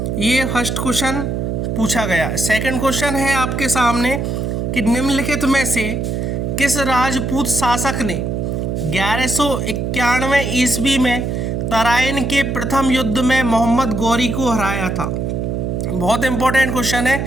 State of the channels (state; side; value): noise; right; hum, 1 dB below the sound